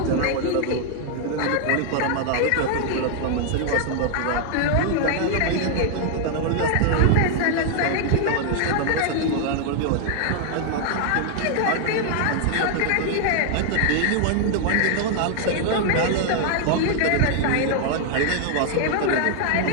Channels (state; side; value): different; both; correlation 0.00